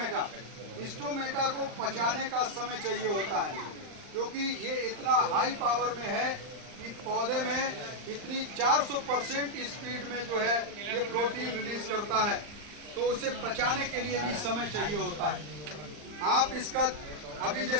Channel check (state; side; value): late; left; 39 ms